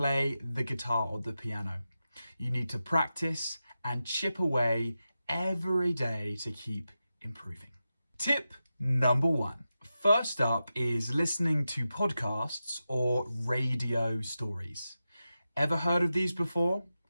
the guitar or the piano. You need to practice and chip away every day to keep improving. Tip number 1. First up is listening to podcasts or radio stories. Ever heard of these before?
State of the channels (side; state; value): both; inverted; correlation -0.91